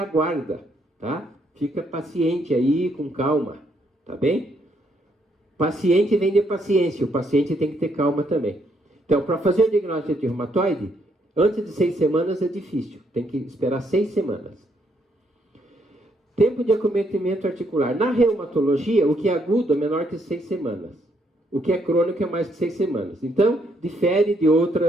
tá? Fica paciente aí, com calma, tá bem? Paciente vem de paciência, o paciente tem que ter calma também. Então, para fazer o diagnóstico de reumatoide, antes de 6 semanas é difícil, tem que esperar 6 semanas. Tempo de acometimento articular. Na reumatologia, o que é agudo é menor que 6 semanas. O que é crônico é mais que 6 semanas. Então, difere de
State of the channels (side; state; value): both; normal; correlation 0.73